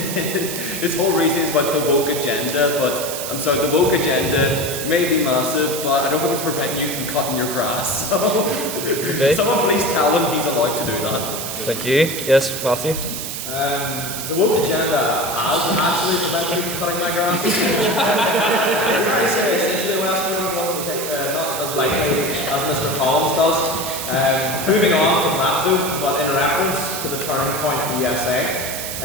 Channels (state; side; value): noise; right; hiss, 6 dB below the sound